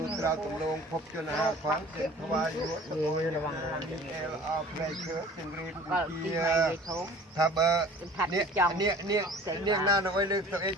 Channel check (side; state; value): both; normal; correlation 0.46